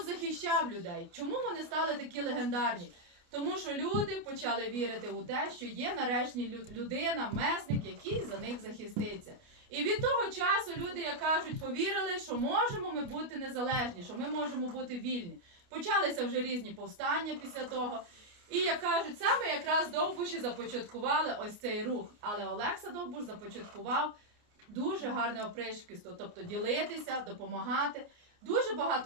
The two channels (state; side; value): late; left; 29 ms